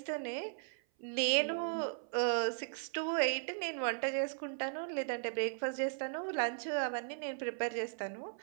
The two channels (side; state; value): left; silent; 53 dB below the other